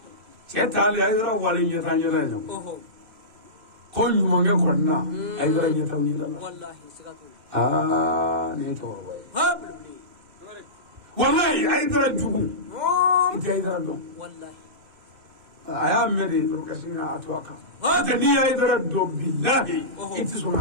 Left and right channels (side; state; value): left; late; 2.6 ms